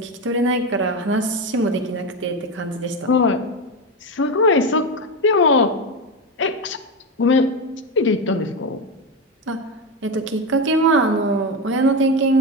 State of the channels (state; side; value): normal; both; correlation 0.16